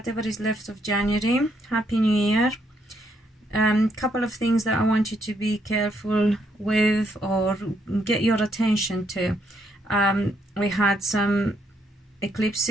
is left of January. Happy New Year. Couple of things that I want you to be careful with or get your attention to. We had some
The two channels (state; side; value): normal; both; correlation 0.74